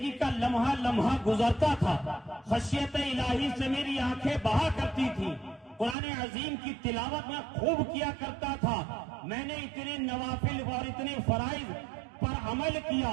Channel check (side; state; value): left; drops out; at 6.0 s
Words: کا لمحہ لمحہ گزرتا تھا، خشیت الہی سے میری آنکھیں بہا کرتی تھی، قرآن عظیم کی تلاوت میں خوب کیا کرتا تھا، میں نے اتنے نوافل اور اتنے فرائض پر عمل کیا،